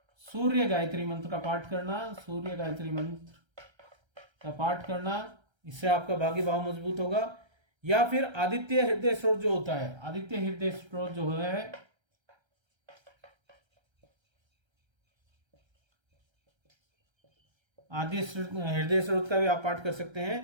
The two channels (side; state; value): left; late; 1.3 ms